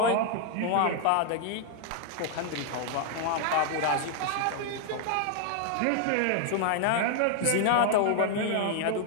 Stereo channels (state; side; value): different; both; correlation 0.00